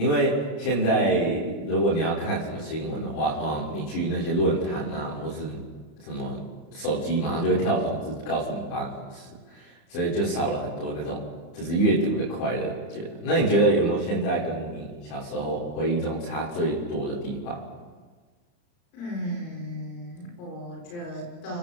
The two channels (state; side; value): late; right; 35 ms